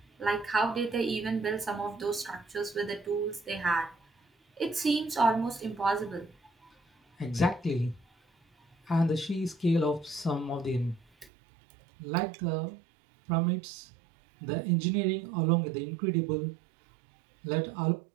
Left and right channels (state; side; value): drops out; left; at 11.3 s